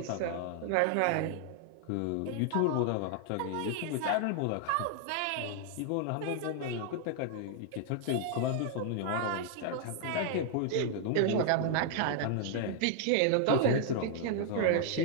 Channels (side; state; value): both; different; correlation 0.00